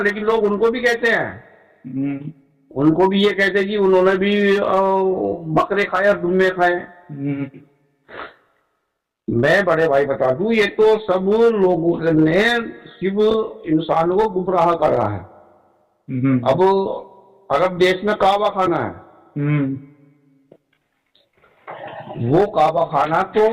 लोग उनको भी कहते हैं, उनको भी ये कहते हैं कि उन्होंने भी बकरे खाए और दुम्बे खाए। मैं बड़े भाई बता दूं, ये तो सब लोगों ने सिर्फ इंसान को गुमराह कर रहा है। अब अरब देश में काबा खाना है, वो काबा खाना तो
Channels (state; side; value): identical; both; correlation 1.00